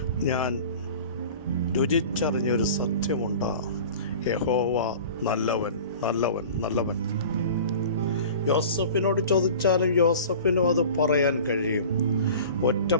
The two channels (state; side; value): inverted; both; correlation -0.40